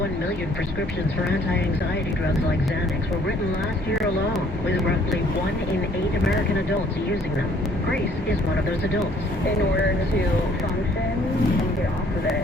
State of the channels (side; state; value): both; normal; correlation 0.60